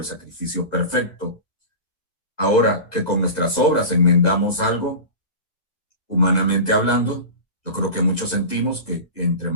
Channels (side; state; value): right; late; 1.8 ms